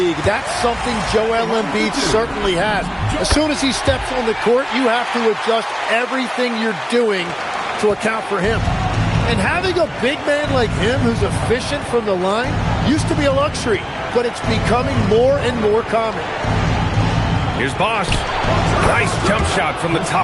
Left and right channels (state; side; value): identical; both; correlation 1.00